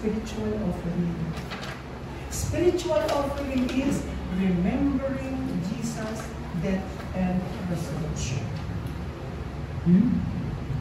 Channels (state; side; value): identical; both; correlation 1.00